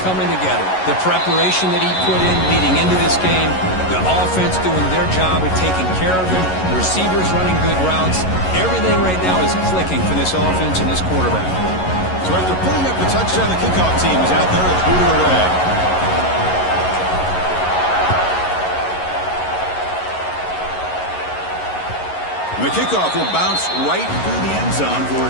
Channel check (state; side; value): late; right; 11 ms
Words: together. The preparation that he put in leading into this game, the offense doing their job of taking care of him, the receivers running good routes. Everything right now is clicking for this offense and this quarterback. So after putting up the touchdown, the kickoff team is out there and booted away. And the kickoff will bounce right through the end zone for a